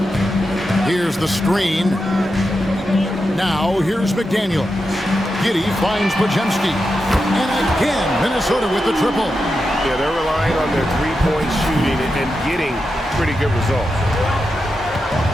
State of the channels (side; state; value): both; normal; correlation 0.88